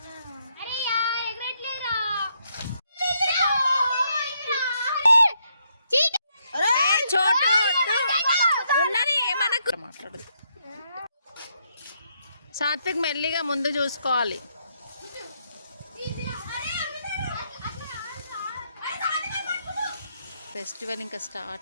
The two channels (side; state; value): both; inverted; correlation -0.76